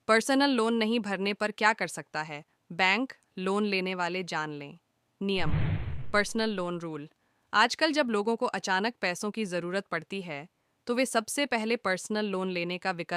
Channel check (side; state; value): both; identical; correlation 1.00